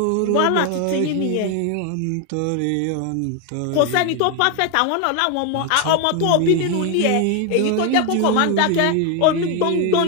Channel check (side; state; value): both; different; correlation 0.01